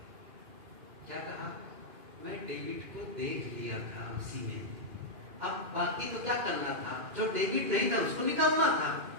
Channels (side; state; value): left; late; 2.5 ms